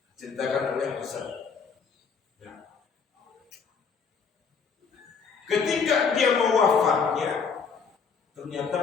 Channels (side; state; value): right; quieter; 5.7 dB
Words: ceritakan oleh Hasan. Nah, ketika dia mau wafatnya, ternyata